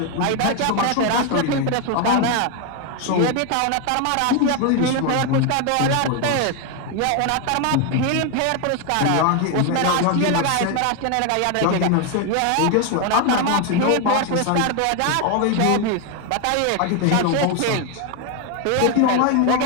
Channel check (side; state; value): both; different; correlation 0.01